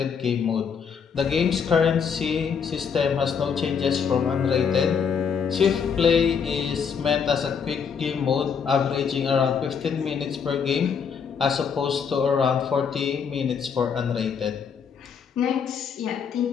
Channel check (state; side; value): quieter; right; 6.6 dB